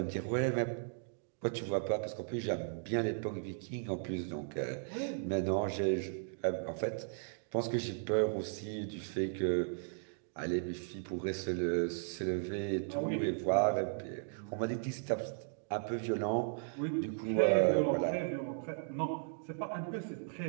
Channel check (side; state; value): left; silent; digital silence